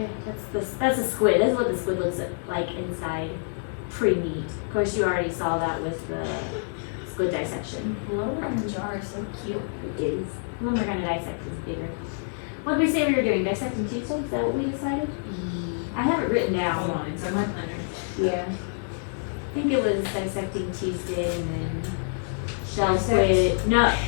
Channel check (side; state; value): right; silent; digital silence